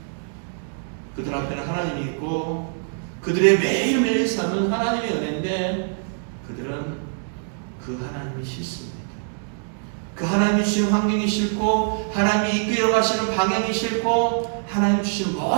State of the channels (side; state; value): left; silent; digital silence